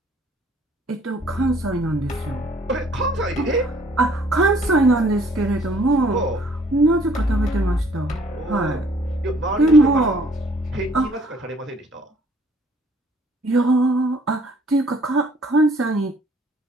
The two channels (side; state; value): both; normal; correlation 0.59